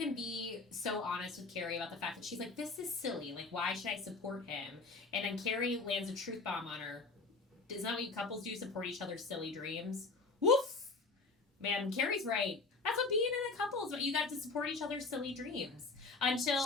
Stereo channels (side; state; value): right; quieter; 3.9 dB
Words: be so honest with Carrie about the fact that she's like, this is silly. Like, why should I support him? And then Carrie lands a truth bomb on her. Isn't that what couples do? Support each other's silly dreams? Woof! Man, Carrie's right. That's what being in a couple is. What you got to support each other's silly dreams. until